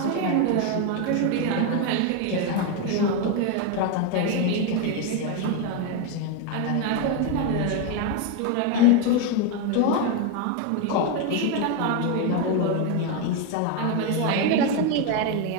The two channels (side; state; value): both; different; correlation 0.02